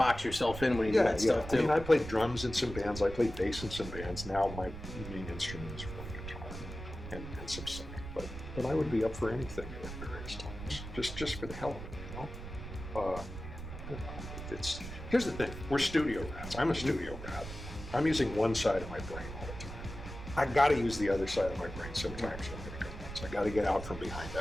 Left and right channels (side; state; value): right; noise; rumble, 10 dB below the sound